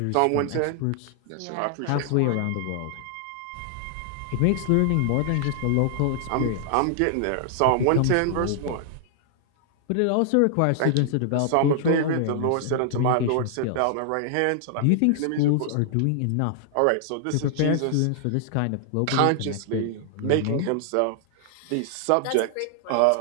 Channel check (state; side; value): different; both; correlation 0.00